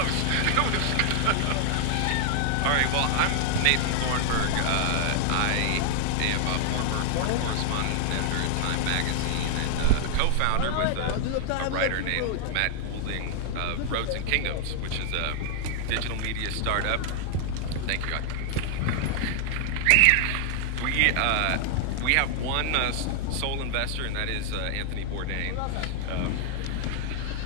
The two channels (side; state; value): both; different; correlation 0.00